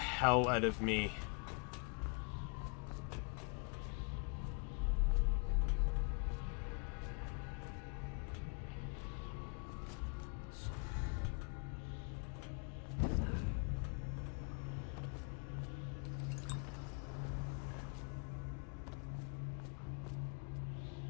out of me.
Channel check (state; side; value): quieter; right; 35.6 dB